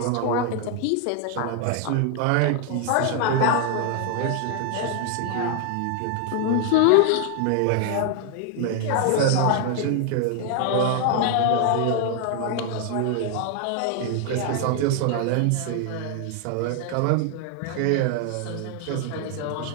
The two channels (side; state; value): both; different; correlation 0.00